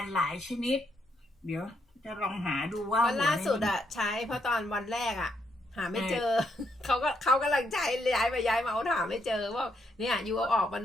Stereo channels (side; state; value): both; normal; correlation 0.76